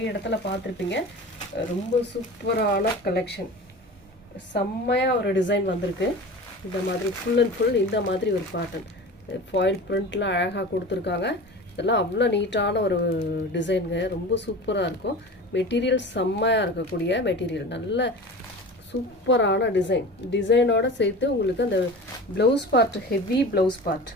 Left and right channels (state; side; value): normal; both; correlation 0.34